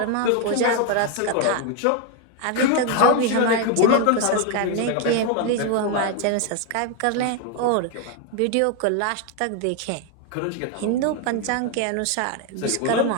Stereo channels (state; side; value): different; both; correlation 0.01